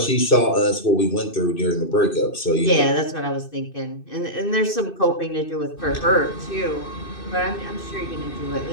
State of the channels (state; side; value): late; right; 2.6 ms